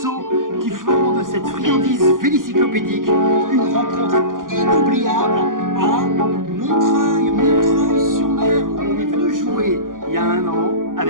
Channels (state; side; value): late; left; 0.90 ms